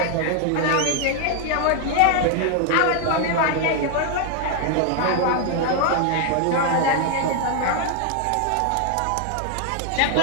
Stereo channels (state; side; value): different; both; correlation 0.00